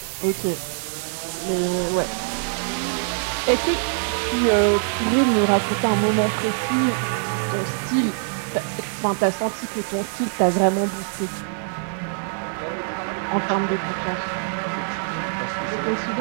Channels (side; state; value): left; silent; 60 dB below the other